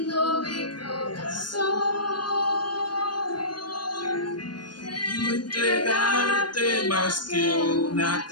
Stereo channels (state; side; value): late; right; 0.71 ms